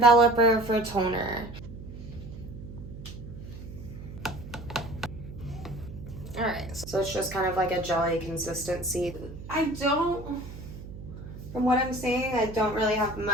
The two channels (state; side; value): noise; right; hum, 12 dB below the sound